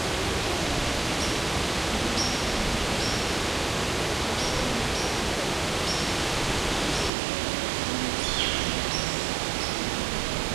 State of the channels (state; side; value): drops out; left; at 7.1 s